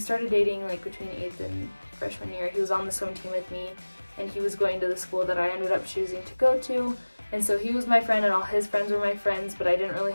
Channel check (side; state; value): both; inverted; correlation -1.00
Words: dating like between 8th and freshman year. He was on the swim team with me, and he was going to the school that I ended up choosing to go to. And so he was my friend and all his friends were my friends, but I didn't really